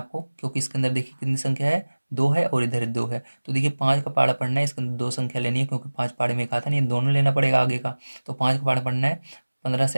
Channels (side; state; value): both; inverted; correlation -1.00